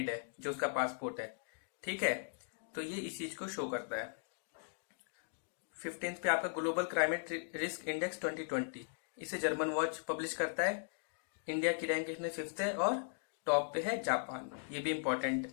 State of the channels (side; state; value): right; silent; digital silence